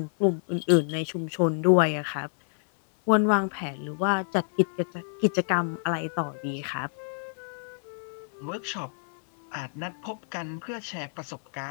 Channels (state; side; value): silent; right; 59 dB below the other